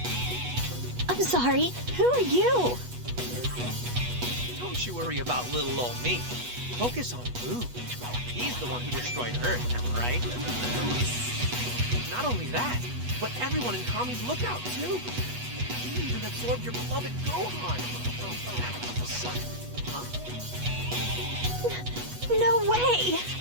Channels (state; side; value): late; left; 8.2 ms